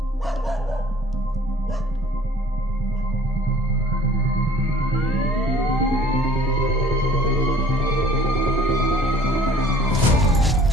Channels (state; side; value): normal; both; correlation 0.53